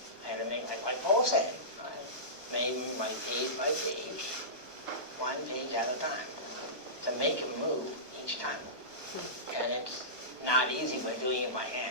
I had to make, like Paul said, I made him by page, one page at a time, to make him move each time. And it's not easy by doing it by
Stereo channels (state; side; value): late; right; 1.2 ms